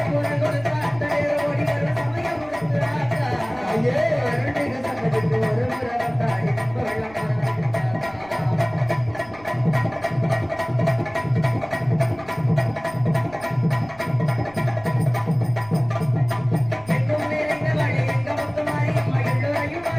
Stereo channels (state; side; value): noise; right; rumble, 24 dB below the sound